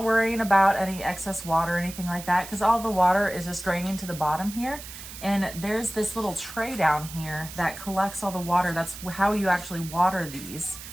worrying about any excess water or anything like that, because all the water is just draining to the bottom here. And there's this little tray down here that collects all the water. That's how you actually water these,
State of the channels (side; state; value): right; noise; hiss, 13 dB below the sound